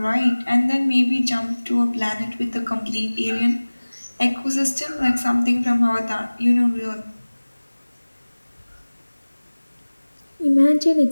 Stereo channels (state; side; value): inverted; both; correlation -1.00